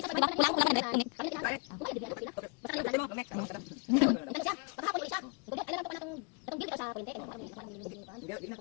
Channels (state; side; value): quieter; right; 33.0 dB